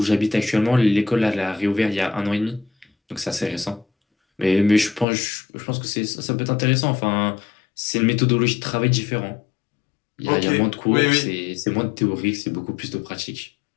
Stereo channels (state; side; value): drops out; right; at 5.1 s